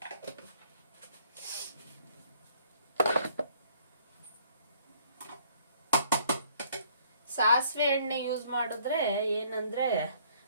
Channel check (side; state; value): both; inverted; correlation -0.62